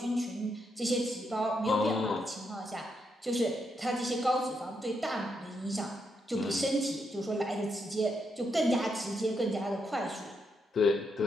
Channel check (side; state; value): both; normal; correlation 0.80